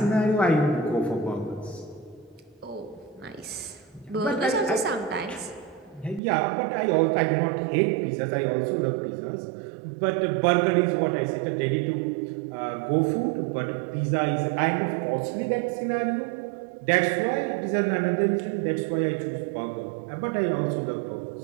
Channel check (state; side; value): drops out; left; at 6.2 s